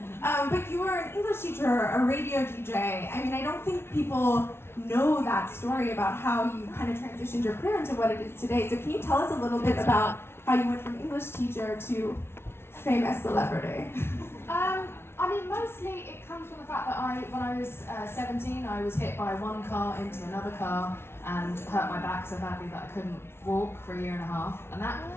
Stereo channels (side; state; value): right; late; 0.12 ms